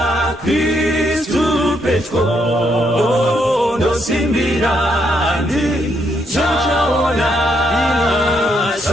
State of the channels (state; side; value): normal; both; correlation 0.76